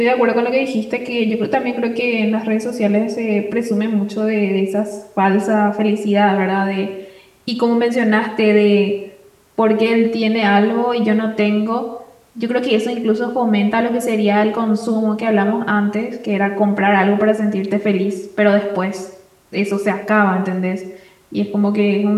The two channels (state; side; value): identical; both; correlation 1.00